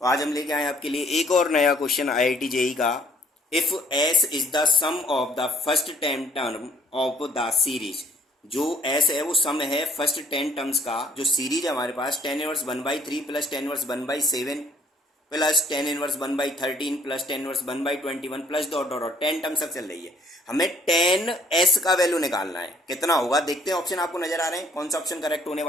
तो आज हम लेके आए आपके लिए एक और नया क्वेश्चन आईआईटी जेई का। If S is the sum of the first 10 term of the series, जो एस है वो सम है फर्स्ट 10 टर्म्स का, जो सीरीज है हमारे पास 10 inverse 1/3 plus 10 inverse 1/7 plus 10 inverse 1/13 plus 10 inverse 1/21 plus dot dot dot 10 terms तक चल रही है। हमें 10 एस का वैल्यू निकालना है, कितना होगा देखते हैं। ऑप्शन आपको नजर आ रहे हैं, कौन सा ऑप्शन करेक्ट होने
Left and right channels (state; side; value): normal; both; correlation 0.61